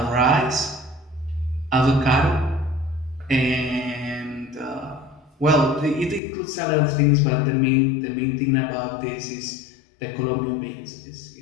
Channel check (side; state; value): right; drops out; at 6.2 s